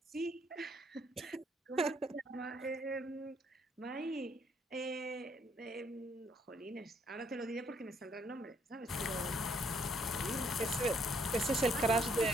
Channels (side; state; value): both; normal; correlation 0.68